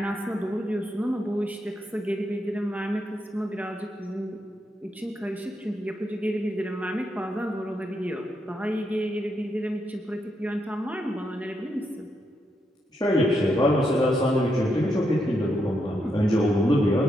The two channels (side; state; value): both; normal; correlation 0.81